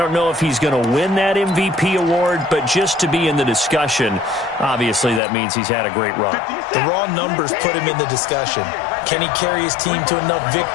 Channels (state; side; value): drops out; right; at 5.2 s